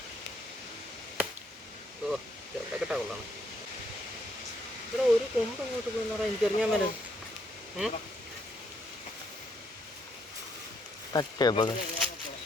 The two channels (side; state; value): both; normal; correlation 0.72